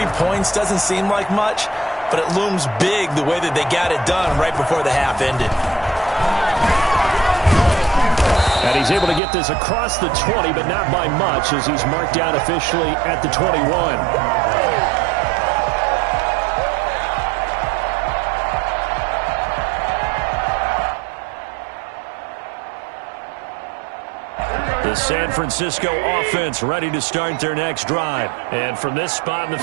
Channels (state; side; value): drops out; left; at 9.2 s